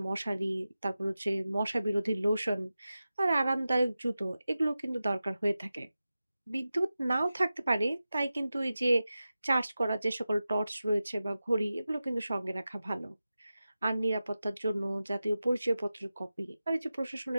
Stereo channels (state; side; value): inverted; both; correlation -0.94